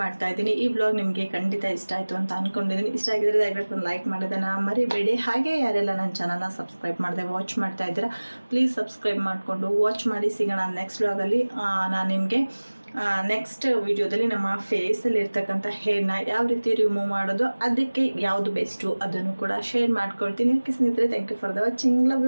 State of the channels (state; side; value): inverted; both; correlation -1.00